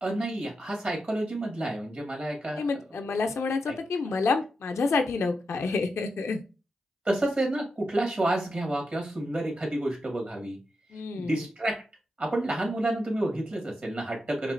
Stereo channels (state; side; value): normal; both; correlation 0.87